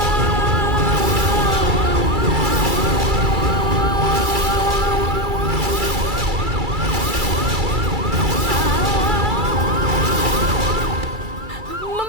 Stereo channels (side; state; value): left; late; 2.3 ms